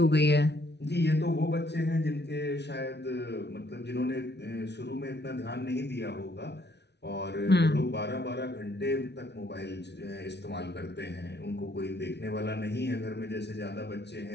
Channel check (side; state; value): right; late; 0.50 ms